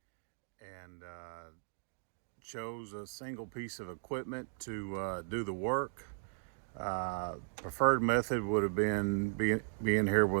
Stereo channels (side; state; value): left; silent; digital silence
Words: and chose a single piece of equipment to do the work. Preferred method would have been being here